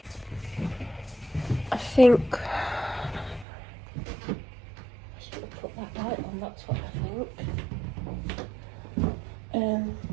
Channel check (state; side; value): drops out; left; at 3.5 s